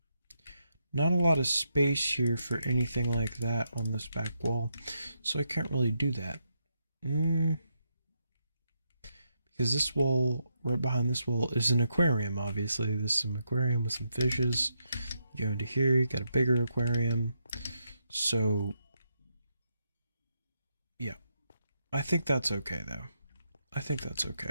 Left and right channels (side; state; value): both; inverted; correlation -0.81